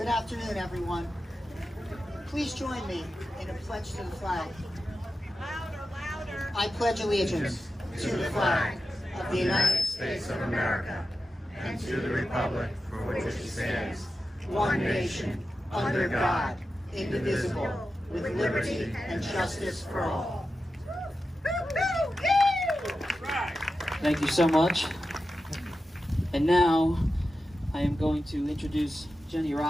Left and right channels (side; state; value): both; normal; correlation 0.91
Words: afternoon, everyone. Please join me in a pledge to the flag. Louder, louder. I pledge allegiance to the flag of the United States of America and to the republic for which it stands, one nation, under God, indivisible, with liberty and justice for all. Thank you so much. And now I am going to introduce Jenny